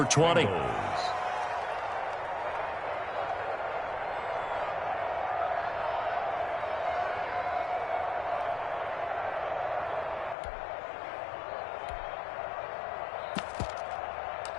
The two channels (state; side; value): drops out; right; at 10.4 s